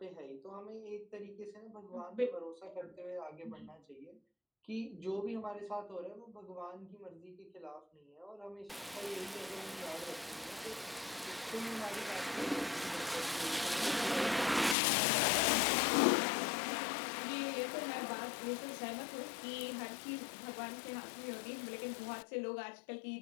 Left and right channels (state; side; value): drops out; right; at 14.8 s